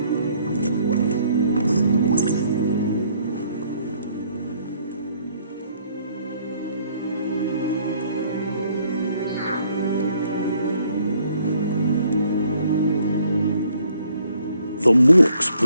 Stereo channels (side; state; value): both; inverted; correlation -0.66